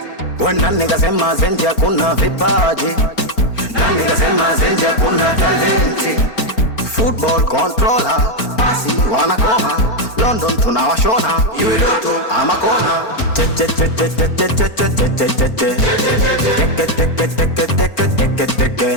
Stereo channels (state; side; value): late; right; 4.4 ms